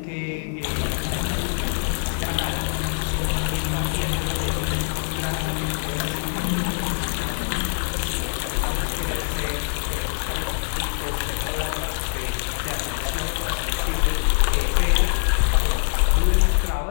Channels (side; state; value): right; silent; 63 dB below the other